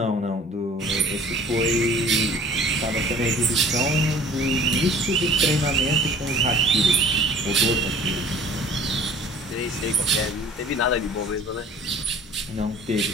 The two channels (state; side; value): normal; both; correlation 0.49